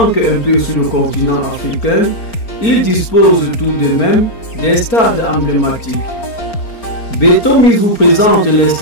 un peu sur le continent africain, ils disposent tout de même des stades emblématiques. Beto Mix vous présente les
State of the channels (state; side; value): late; right; 4.4 ms